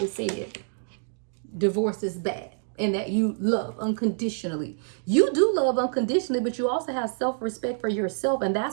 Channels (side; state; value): left; silent; digital silence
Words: said divorce is bad. And that you love unconditionally. You do love unconditionally, but you also have self-respect for yourself. And